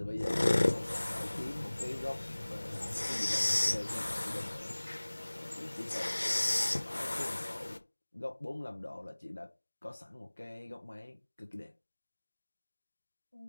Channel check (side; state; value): both; inverted; correlation -1.00